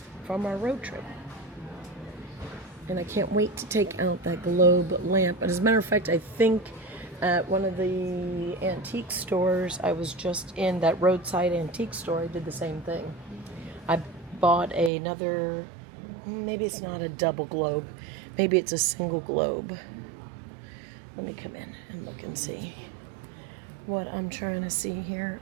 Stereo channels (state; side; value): drops out; left; at 14.9 s